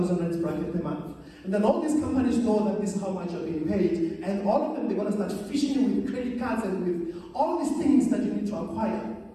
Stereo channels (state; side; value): identical; both; correlation 1.00